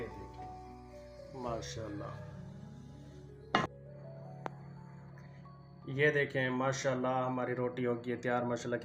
देखें माशाल्लाह, ये देखें माशाल्लाह हमारी रोटी हो गई है तैयार माशाल्लाह,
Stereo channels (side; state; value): both; identical; correlation 1.00